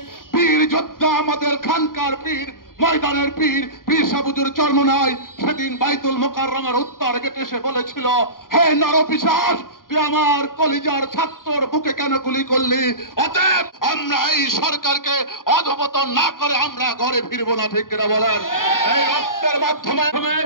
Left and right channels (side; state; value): right; late; 0.91 ms